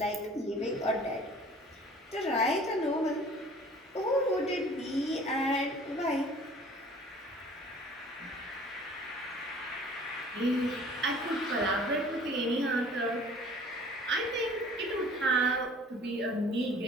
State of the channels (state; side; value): normal; both; correlation 0.49